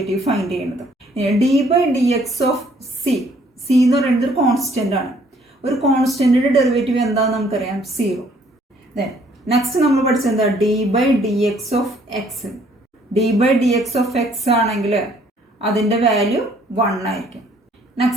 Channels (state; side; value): normal; both; correlation 0.62